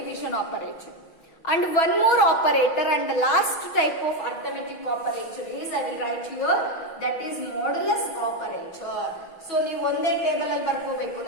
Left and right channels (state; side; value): late; right; 6.2 ms